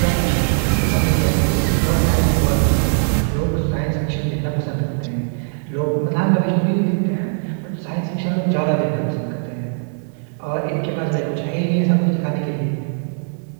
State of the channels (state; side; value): silent; left; 66 dB below the other